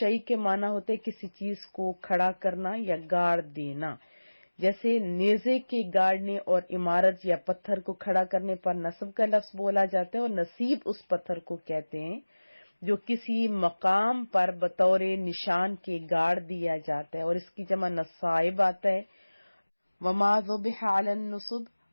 کے معنی ہوتے کسی چیز کو کھڑا کرنا یا گاڑ دینا، جیسے نیزے کے گاڑنے اور عمارت یا پتھر کو کھڑا کرنے پر نصب کا لفظ بولا جاتا ہے، اور نصیب اس پتھر کو کہتے ہیں جو کسی مقام پر بطور نشان کے گاڑ دیا جاتا ہے، اور اس کی جمع نصائب آتا ہے۔ وما ذبح علی النصب،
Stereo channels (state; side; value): inverted; both; correlation -1.00